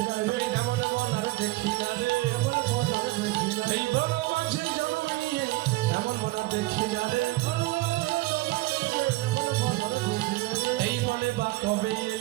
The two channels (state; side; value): quieter; left; 21.1 dB